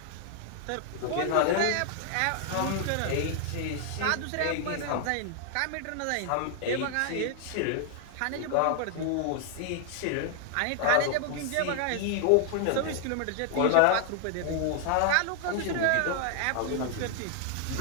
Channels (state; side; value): different; both; correlation 0.00